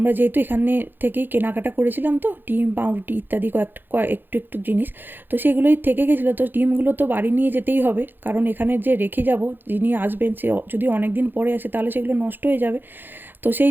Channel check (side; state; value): left; late; 0.095 ms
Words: যেহেতু এখানে থেকেই কেনাকাটা করেছিলাম, তো ডিম পাউরুটি ইত্যাদি একটু একটু জিনিস তো সেগুলোই থেকে গেছিলো। তো ডিমগুলো তো বাড়ি নিয়ে যেতেই হবে, কারণ এখানে যে রেখে যাব, যিনি আসবেন সে যদি অনেক দিন পরে আসে তাহলে সেগুলো নষ্ট হয়ে যাবে। তো সেই